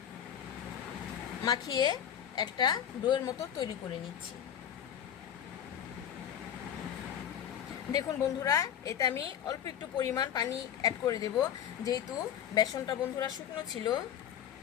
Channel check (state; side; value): quieter; right; 9.5 dB